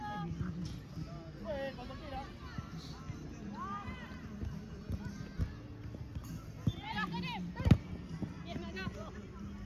Bien, cuando quiera.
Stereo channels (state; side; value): identical; both; correlation 1.00